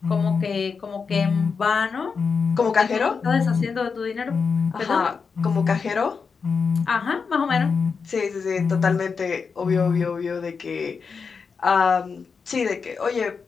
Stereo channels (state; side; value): quieter; right; 5.4 dB